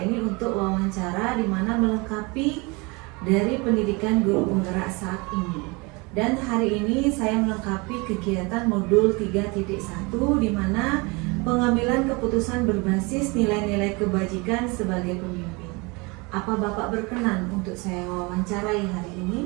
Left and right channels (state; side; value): quieter; left; 27.4 dB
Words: ini untuk wawancara di mana melengkapi dari pendidikan guru penggerak saat ini. Dan hari ini saya melengkapi kegiatan modul 3.1 di mana pengambilan keputusan berbasis nilai-nilai kebajikan sebagai pemimpin. Apa Bapak berkenan untuk saya wawancarai hari ini?